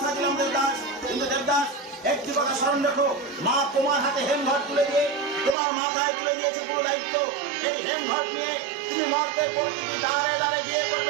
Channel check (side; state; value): left; drops out; at 5.6 s